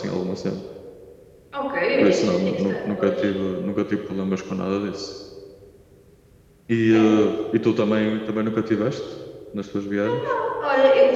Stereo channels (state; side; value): identical; both; correlation 1.00